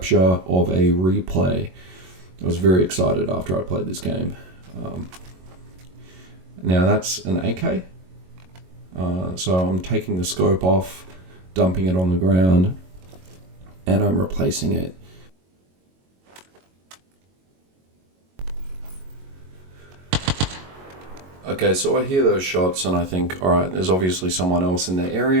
of a replay. I was very excited after I played this game. Now that's an AK. So I'm taking the scope off, dumping it on the ground, and I'm replacing it. Okay, so I hear those shots and I think, alright, there's obviously someone else in the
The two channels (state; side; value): late; left; 22 ms